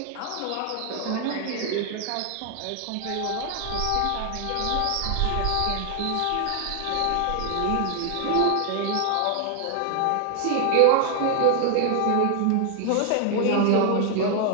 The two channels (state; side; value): different; both; correlation 0.00